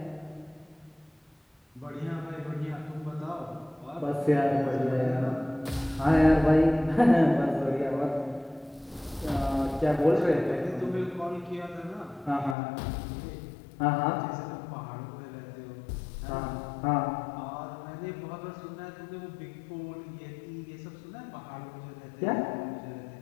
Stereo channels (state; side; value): drops out; right; at 12.6 s